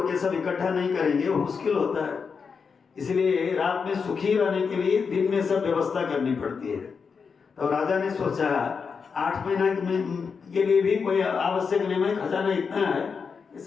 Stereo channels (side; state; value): right; quieter; 5.6 dB